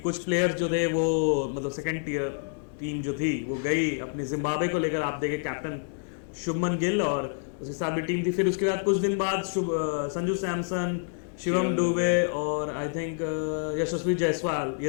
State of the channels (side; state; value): right; silent; digital silence